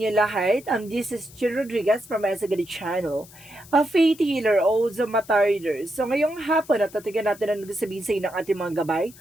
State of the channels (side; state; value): left; noise; hiss, 21 dB below the sound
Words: lahat. This is Chino Rodriguez from Esagadi Channel, a faith healer o Zamatarder. So ngayong hapon, natatigan natin ang nagsasabihin sa inyo ng ating mga gabay.